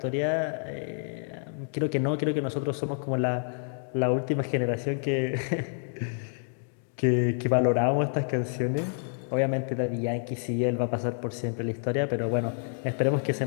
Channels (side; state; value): right; silent; 59 dB below the other